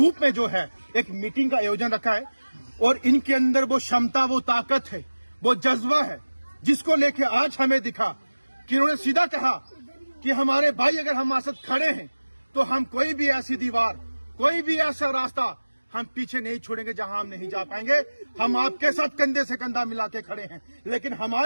में जो है एक मीटिंग का आयोजन रखा है। और इनके अंदर वो क्षमता, वो ताकत है, वो जज्बा है, जिसको लेके आज हमें दिखा कि इन्होंने सीधा कहा कि हमारे भाई अगर हमारे साथ खड़े हैं तो हम कोई भी ऐसी दीवार, कोई भी ऐसा रास्ता हम पीछे नहीं छोड़ेंगे जहां हम नहीं जा पाएंगे। हम आपके साथ कंधे से कंधा मिला के खड़े हैं, लेकिन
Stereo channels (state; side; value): inverted; both; correlation -1.00